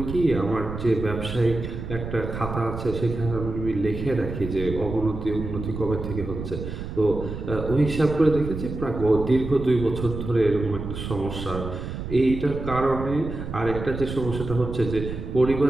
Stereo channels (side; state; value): right; noise; rumble, 7 dB below the sound